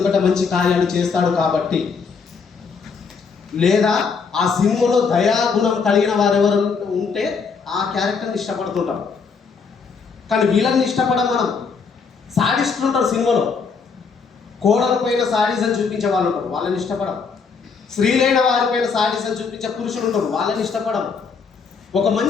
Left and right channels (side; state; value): right; quieter; 5.4 dB